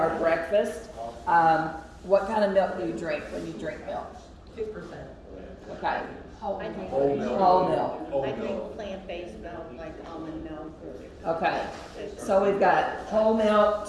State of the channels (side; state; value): both; identical; correlation 1.00